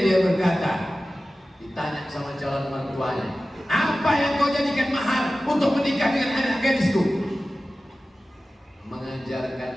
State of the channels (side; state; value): both; normal; correlation 0.95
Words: dia berkata, ditanya sama calon mertuanya, apa yang kau jadikan mahar untuk menikah dengan anak gadisku? Mengajarkan